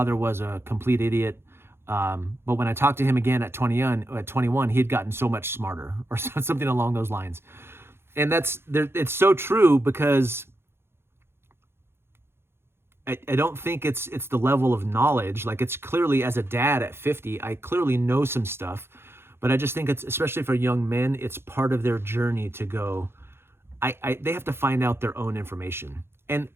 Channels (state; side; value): late; left; 0.12 ms